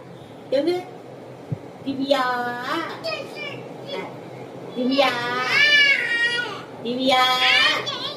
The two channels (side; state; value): both; identical; correlation 1.00